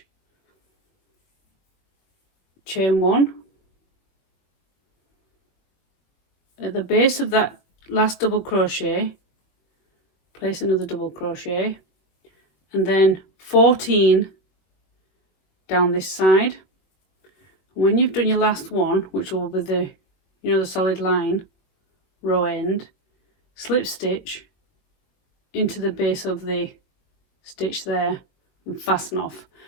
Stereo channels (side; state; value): right; late; 22 ms